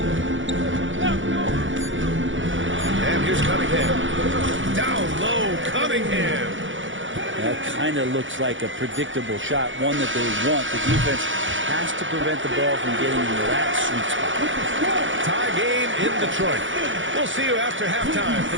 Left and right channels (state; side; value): late; left; 0.56 ms